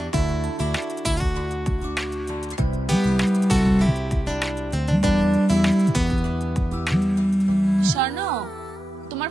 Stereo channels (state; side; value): normal; both; correlation 0.92